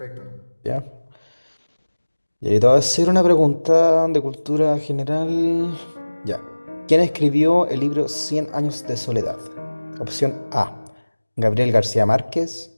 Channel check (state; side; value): inverted; both; correlation -1.00